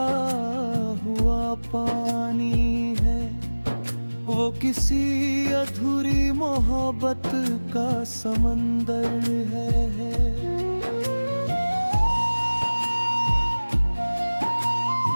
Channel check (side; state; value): both; inverted; correlation -1.00